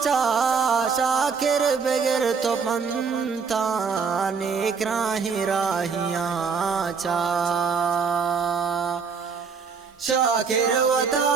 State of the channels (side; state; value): left; quieter; 5.6 dB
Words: چا شاکر بغیر تو پنتا نیک راہی راہیاں چا شاکر و